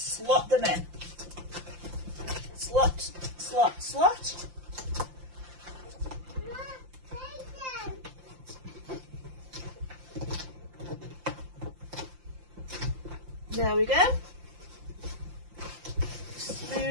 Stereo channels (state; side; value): late; left; 5.8 ms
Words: them in. Slot, slot, slot. There we go.